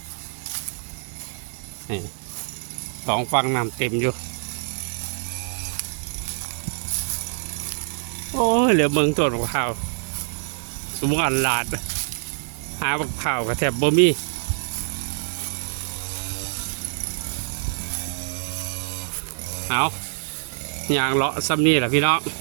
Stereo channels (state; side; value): silent; left; digital silence